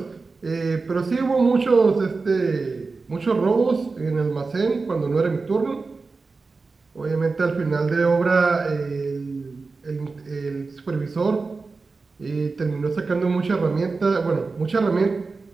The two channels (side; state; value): left; quieter; 4.1 dB